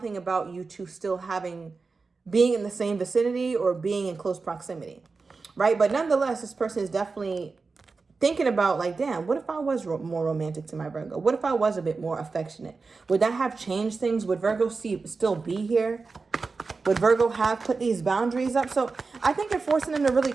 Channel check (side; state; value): left; quieter; 4.3 dB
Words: about you two still being in the same vicinity or being in close proximity, right? But nonetheless, this person is definitely thinking about like, damn, what if I was more romantic to my Virgo? What if I was a bit more affectionate? Would that have changed things? Would Virgo still be here? Would Virgo have put these boundaries up? So I think you're forcing them to really